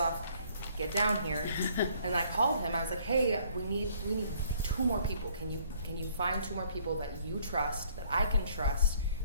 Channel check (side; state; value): both; inverted; correlation -0.61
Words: Get down here. And I called him. I was like, hey, we need 2 more people. Can you find 2 more people that you trust, that I can trust,